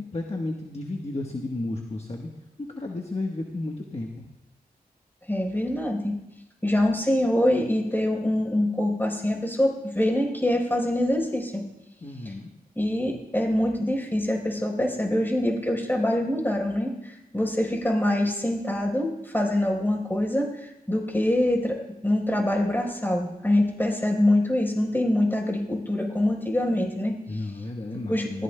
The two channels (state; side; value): normal; both; correlation 0.93